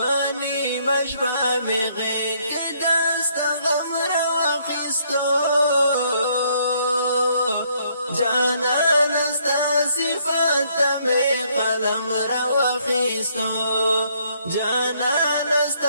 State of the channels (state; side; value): inverted; both; correlation -0.68